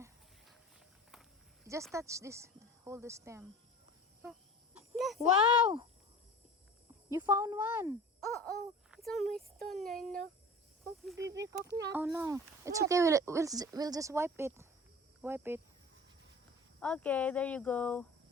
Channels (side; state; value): both; normal; correlation 0.39